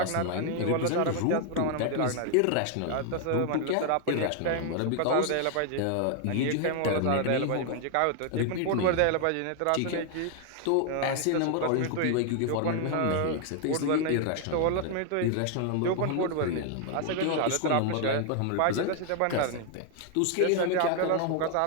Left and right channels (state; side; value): different; both; correlation 0.00